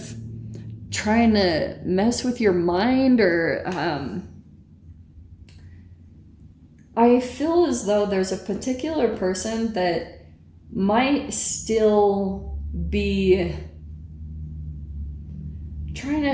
trying to mess with your mind, or I feel as though there's a particular person that might still be trying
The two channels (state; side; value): identical; both; correlation 1.00